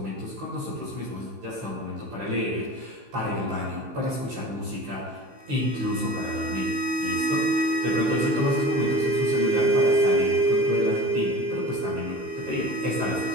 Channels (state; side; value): late; left; 15 ms